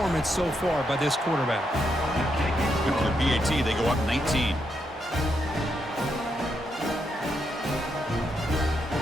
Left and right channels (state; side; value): normal; both; correlation 0.80